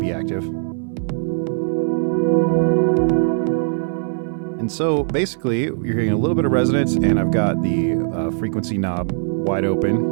active. And so basically, you're hearing a little bit of resonance, and I've got the frequency knob wide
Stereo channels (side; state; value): left; silent; digital silence